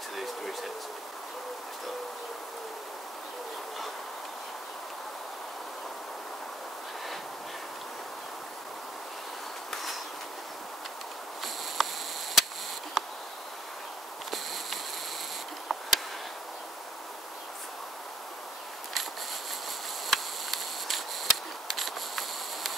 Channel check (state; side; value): normal; both; correlation 0.63